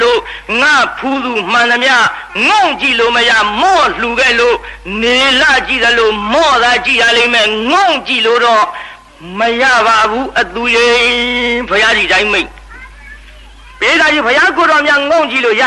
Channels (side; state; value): both; identical; correlation 1.00